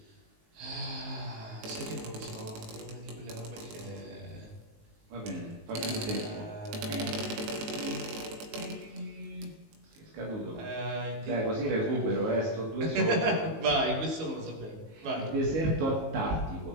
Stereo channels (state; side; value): late; left; 19 ms